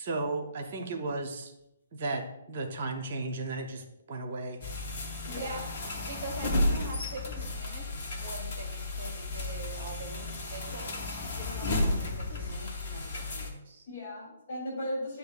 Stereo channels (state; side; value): inverted; both; correlation -0.62